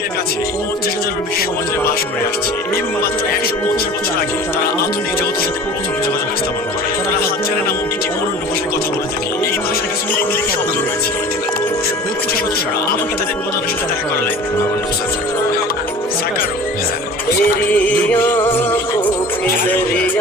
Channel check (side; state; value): both; normal; correlation 0.41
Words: কাছে 50,000-এরও বেশি সমাজে বাস করে আসছে এবং মাত্র 150 বছর আগে তারা আধুনিক জগতের সাথে প্রথম যোগাযোগ স্থাপন করে। তারা হাজারে নামক একটি অনন্য ভাষায় কথা বলে থাকে। এই ভাষার কিছু লিঙ্ক শব্দ রয়েছে। গোষ্ঠী সদস্যরা আমাকে তাদের প্রধানের সাথে দেখা করালেন। আমার নাম সাকারো।